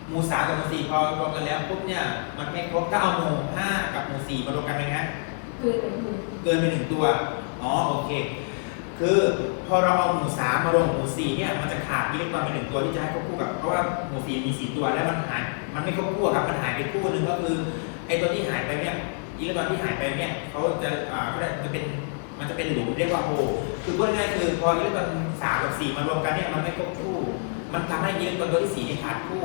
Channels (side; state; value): right; silent; 59 dB below the other